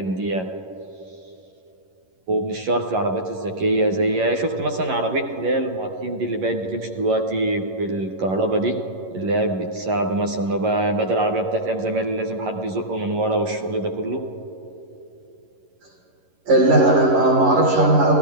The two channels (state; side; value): late; left; 11 ms